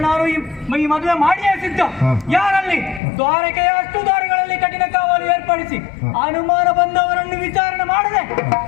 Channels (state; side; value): drops out; right; at 3.0 s